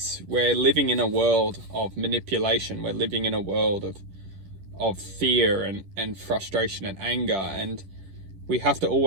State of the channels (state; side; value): late; left; 11 ms